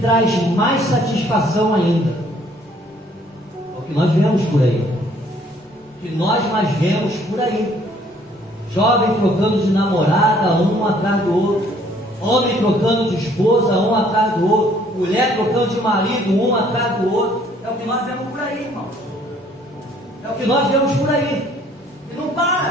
mais satisfação ainda. É o que nós vemos por aí. O que nós mais vemos por aí. Jovem trocando de namorada, um atrás do outro. Homem trocando de esposa, um atrás do outro. Mulher trocando de marido, um atrás do outro. É o que nós vemos por aí, irmão. É o que nós vemos por aí. E não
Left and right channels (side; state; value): both; normal; correlation 0.61